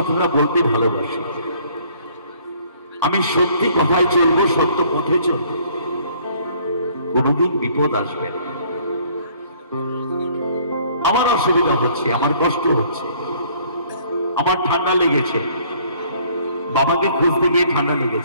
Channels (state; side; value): inverted; both; correlation -0.59